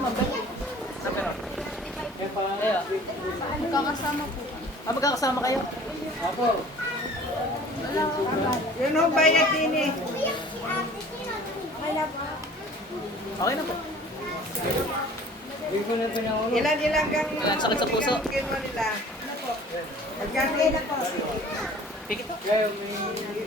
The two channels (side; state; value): both; normal; correlation 0.48